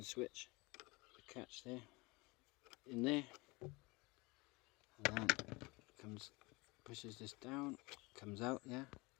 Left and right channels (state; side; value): quieter; right; 24.9 dB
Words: switch, the catch there, in there, and then comes, pushes this down, comes out, yeah.